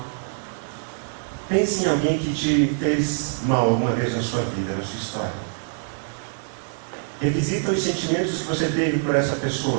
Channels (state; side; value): silent; left; 62 dB below the other